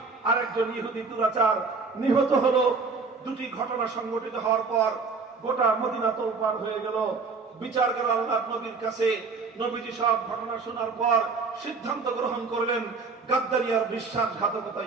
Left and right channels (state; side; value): quieter; left; 4.6 dB